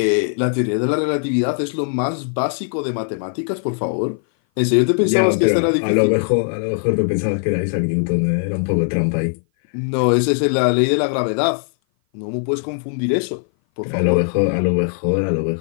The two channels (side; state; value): right; silent; 57 dB below the other